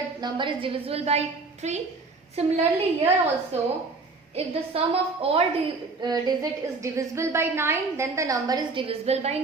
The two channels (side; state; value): left; quieter; 3.9 dB